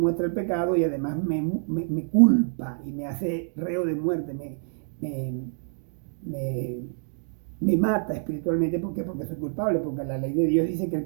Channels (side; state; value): left; silent; digital silence